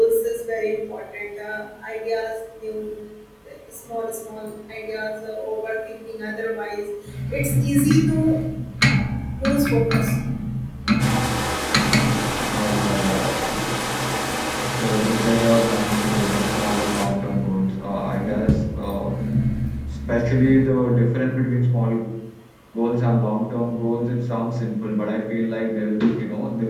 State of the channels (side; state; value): both; identical; correlation 1.00